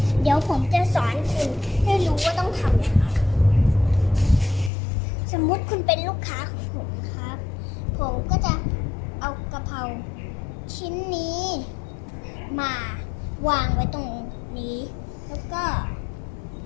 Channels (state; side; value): drops out; right; at 4.7 s